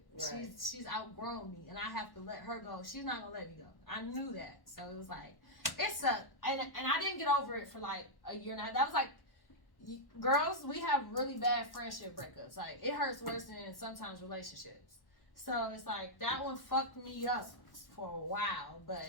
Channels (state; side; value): late; right; 1.1 ms